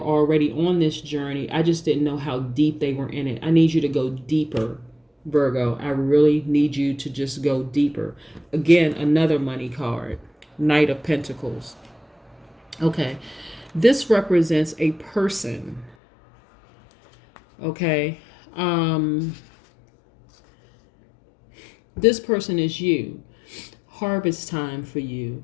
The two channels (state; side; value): drops out; right; at 16.0 s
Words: already on this journey. I just didn't know how deep they were in it. I need you to go deeper, Virgo. I really need you to just go deeper. Again, another money card, Knight of Pentacles. Okay, this represents a person. Okay, this person is you. Harvest time for you.